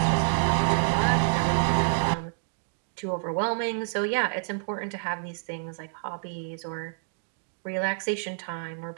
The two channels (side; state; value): left; silent; digital silence